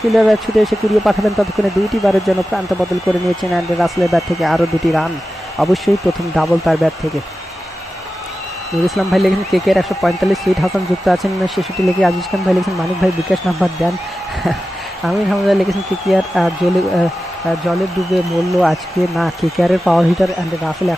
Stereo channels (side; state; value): both; normal; correlation 0.93